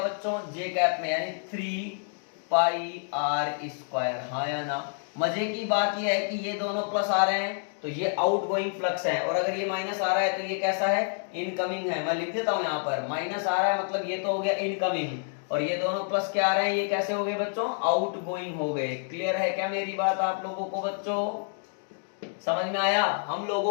बच्चों, जे कैप में, यानी 3 पाई आर स्क्वायर। हाँ या ना? मजे की बात यह है कि ये दोनों प्लस आ रहे हैं तो ये आउटगोइंग फ्लक्स है, और अगर ये माइनस आ रहा है तो ये कैसा है, इनकमिंग है। मैं लिख देता हूं यहाँ पर, माइनस आ रहा है मतलब ये तो हो गया इनकमिंग, और ये दोनों प्लस क्या आ रहे हैं, ये कैसे हो गए बच्चों, आउटगोइंग हो गए। क्लियर है क्या मेरी बात आप लोगों को बच्चों? समझ में आया? हम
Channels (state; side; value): silent; right; 59 dB below the other